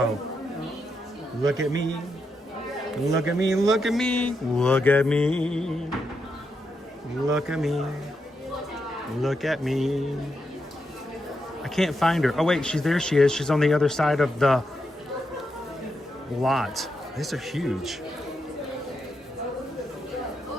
Look at me. Look at me. Look at me. Look at me. Look at me. Look at me. I can't find her. Oh, wait. There she is. She's on the other side of the lot. These are huge.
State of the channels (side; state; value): both; normal; correlation 0.83